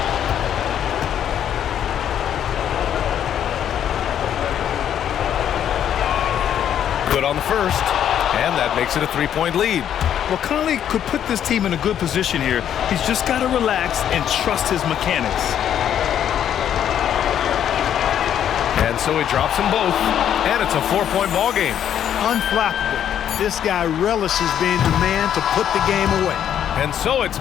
Good on the first, and that makes it a 3-point lead. Well, Conley could put this team in a good position here. He's just got to relax and trust his mechanics. And so he drops them both, and it's a 4-point ball game. Unflappable. This guy relishes being the man to put the game away. And so it's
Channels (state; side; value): quieter; right; 9.8 dB